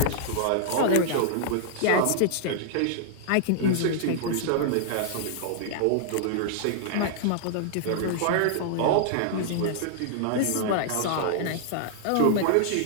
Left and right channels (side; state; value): both; different; correlation -0.01